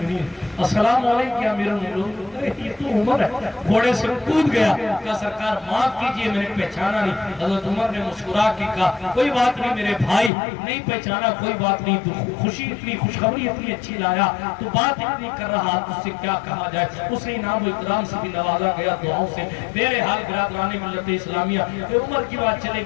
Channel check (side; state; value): right; drops out; at 10.3 s